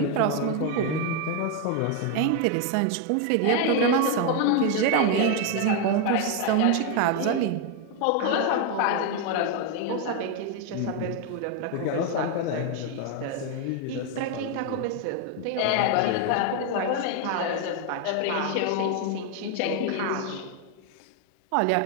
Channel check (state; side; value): different; both; correlation 0.01